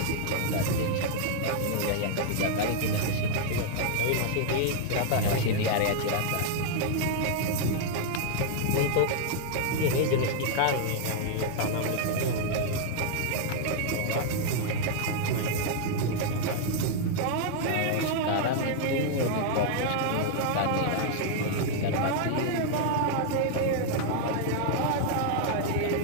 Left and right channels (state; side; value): different; both; correlation 0.00